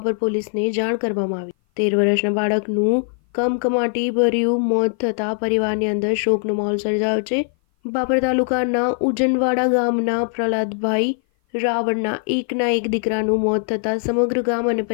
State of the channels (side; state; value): right; silent; 57 dB below the other